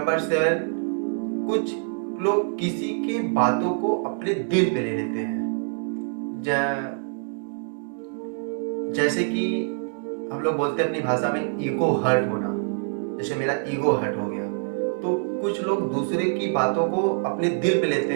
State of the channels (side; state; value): left; silent; 62 dB below the other